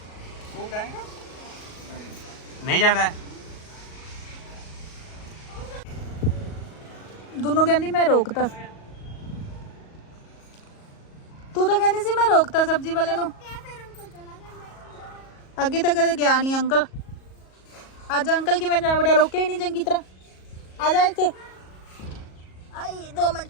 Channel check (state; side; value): late; right; 37 ms